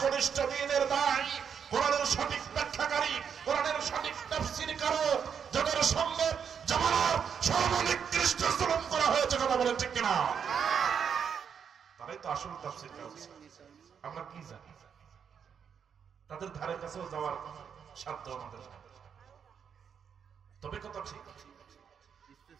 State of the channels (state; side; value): quieter; left; 7.3 dB